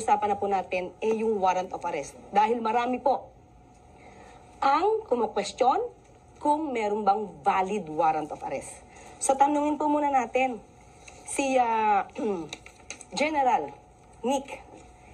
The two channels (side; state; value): both; identical; correlation 1.00